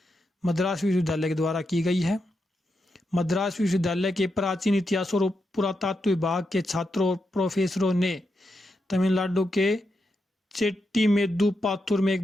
मद्रास विश्वविद्यालय के द्वारा की गई है। मद्रास विश्वविद्यालय के प्राचीन इतिहास और पुरातत्व विभाग के छात्रों और प्रोफेसरों ने तमिलनाडु के चेट्टीमेदु पाथुर में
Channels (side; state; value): both; normal; correlation 0.85